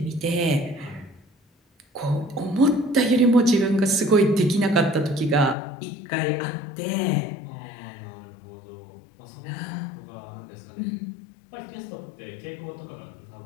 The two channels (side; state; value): right; drops out; at 5.6 s